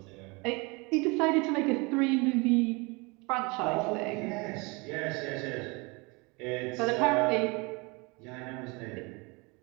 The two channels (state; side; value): quieter; left; 27.7 dB